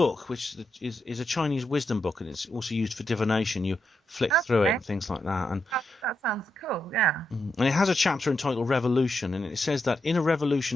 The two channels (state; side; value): normal; both; correlation 0.83